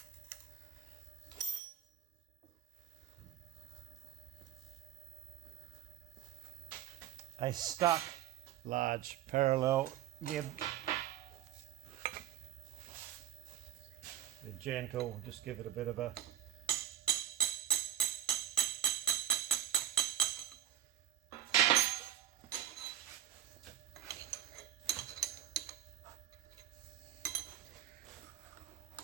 A stuck large parallel gib. They're gentle, just give it a bit of a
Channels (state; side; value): quieter; left; 11.4 dB